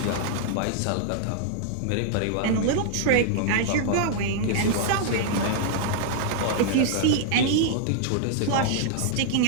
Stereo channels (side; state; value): both; different; correlation -0.01